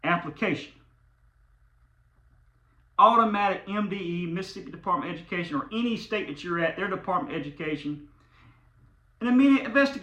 application. Automatic MDE, Mississippi Department of Education, or any state that you're at, their Department of Education, an immediate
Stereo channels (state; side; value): identical; both; correlation 1.00